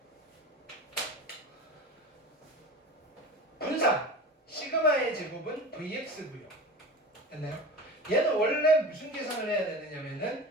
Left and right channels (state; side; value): normal; both; correlation 0.33